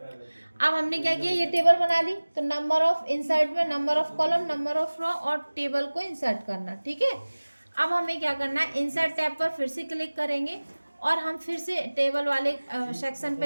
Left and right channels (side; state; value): both; inverted; correlation -1.00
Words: अब हमने क्या किया, ये टेबल बना ली। तो नंबर ऑफ इंसर्ट में number of column, number of row और टेबल को इंसर्ट करना। ठीक है, अब हमें क्या करना है, इंसर्ट टैब पर फिर से क्लिक करेंगे और हम फिर से टेबल वाले सेक्शन